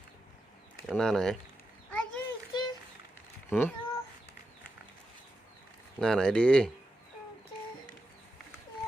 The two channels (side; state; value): both; normal; correlation 0.88